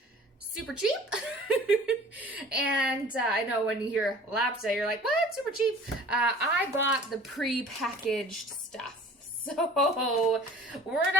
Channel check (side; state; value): both; normal; correlation 0.46